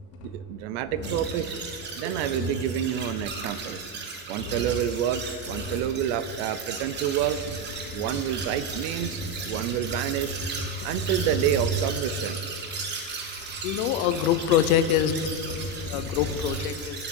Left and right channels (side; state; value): both; normal; correlation 0.09